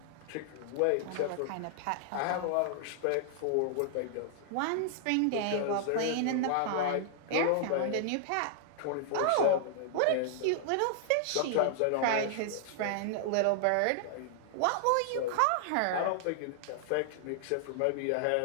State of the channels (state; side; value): different; both; correlation -0.01